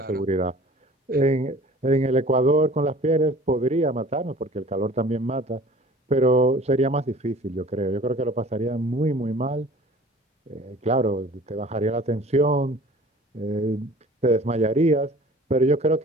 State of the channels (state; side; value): normal; both; correlation 0.47